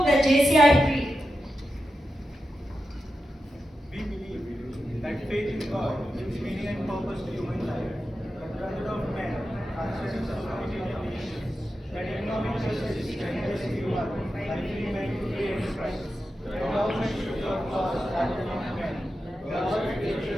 the JCI Creed. We believe that faith in God gives meaning and purpose to human life. The brotherhood of men, conscious of society and nations, that economic justice strengthens human by free men to free enterprise. The government should of laws rather than of men. Government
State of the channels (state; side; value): normal; both; correlation 0.90